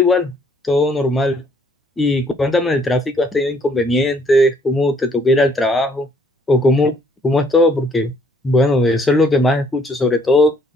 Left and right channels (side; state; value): both; normal; correlation 0.64